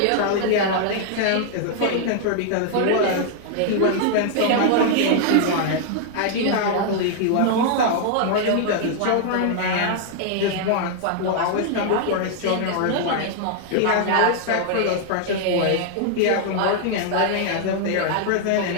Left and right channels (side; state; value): both; different; correlation 0.00